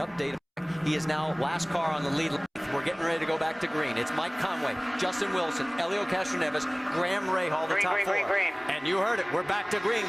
He is now last car on the lead. We're getting ready to go back to green. It's Mike Conway, Justin Wilson, Elio Castroneves, Graham Rahal, the top 4. Green. And you heard it. We're back to green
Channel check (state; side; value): identical; both; correlation 1.00